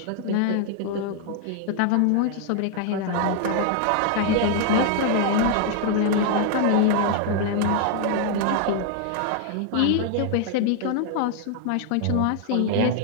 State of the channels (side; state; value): both; different; correlation 0.00